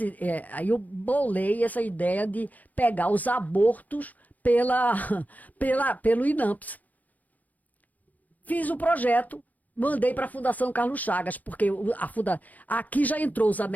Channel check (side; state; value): right; late; 0.079 ms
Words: aí eu bolei essa ideia de pegar os abortos pelo INAMPS. Fiz o projeto, mandei para a Fundação Carlos Chagas, porque aqui já entrou os